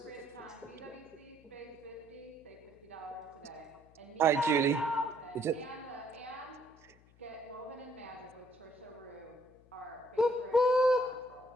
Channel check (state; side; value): noise; left; hum, 27 dB below the sound